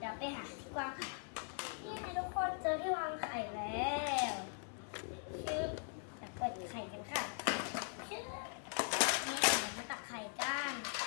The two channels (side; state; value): right; silent; 51 dB below the other